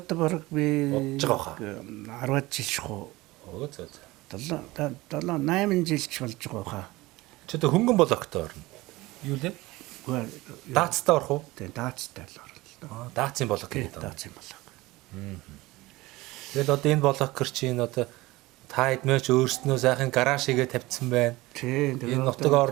баг би бодож байгаа 10 жил шхуу. Оо зөө. 8 жилч болж байгаа хаа. Чи одоо хөнгөн блогтой орно. Юу лээ? Даацтай орох уу? Тийм, даацтай л орно. Даацын блог гэдэг. Даацын блог. Тэгэл одоо энэ блогер чинь одоо та эдмээч өөрснөө сайхан гараж хийгээ тавьсан байна. Тийм. Энэ нутаг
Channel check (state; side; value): quieter; left; 20.1 dB